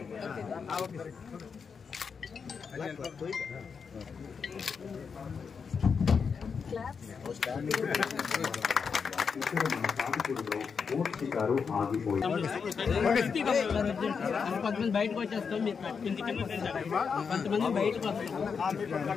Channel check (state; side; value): quieter; right; 5.9 dB